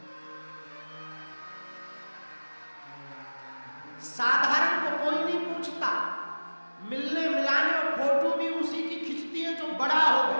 साधारण को कोई नहीं पूछता, मिलने मिलाने और फोटो भी उसी की खिंचती है जो बड़ा हो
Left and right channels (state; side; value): inverted; both; correlation -1.00